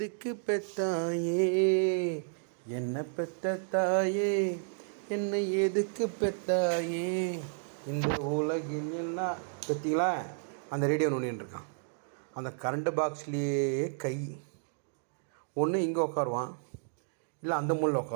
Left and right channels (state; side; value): silent; left; digital silence